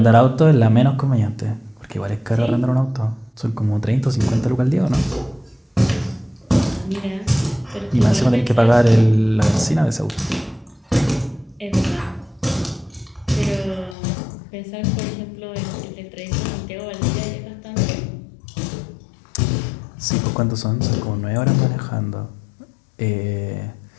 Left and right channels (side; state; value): right; drops out; at 14.0 s